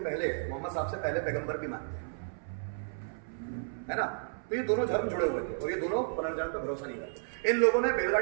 पहले, मोहम्मद साहब से पहले पैगंबर भी मानते हैं, है ना? तो ये दोनों धर्म जुड़े हुए थे और ये दोनों पुनर्जन्म पर भरोसा नहीं करते। इन लोगों ने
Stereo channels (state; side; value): silent; left; 56 dB below the other